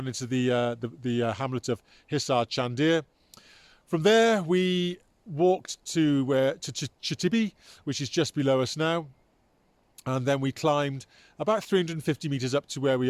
into the hamlet of Hisar Chandir. From there we walked to Chatibi, which is just below us now, and then we climbed about 350 metres up to where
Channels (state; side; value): identical; both; correlation 1.00